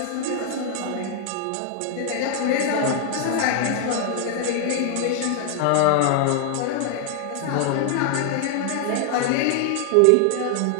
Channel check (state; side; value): different; both; correlation 0.00